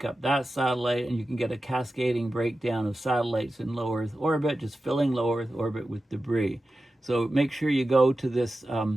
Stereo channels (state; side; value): normal; both; correlation 0.93